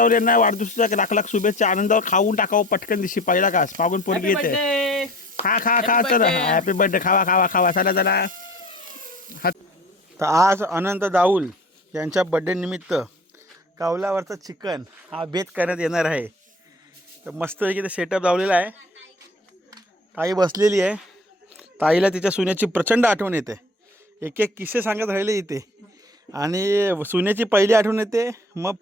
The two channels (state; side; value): normal; both; correlation 0.45